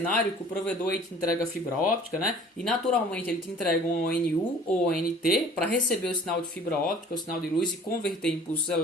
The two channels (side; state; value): both; normal; correlation 0.49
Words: que o provedor aí te entrega fibra óptica, E naturalmente ele te entrega um ONU ou ONT para receber o sinal de fibra óptica, o sinal de luz e converter em impulsos